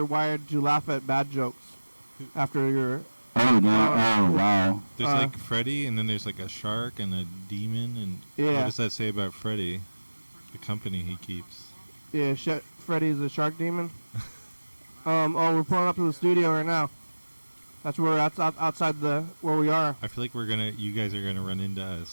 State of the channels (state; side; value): inverted; both; correlation -1.00